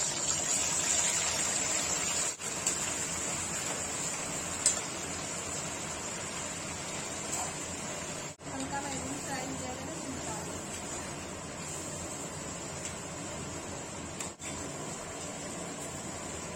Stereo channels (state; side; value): identical; both; correlation 1.00